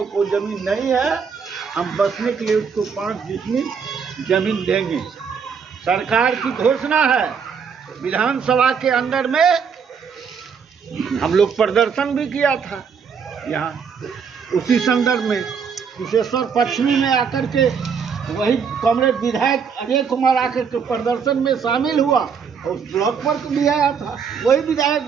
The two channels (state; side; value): quieter; left; 6.4 dB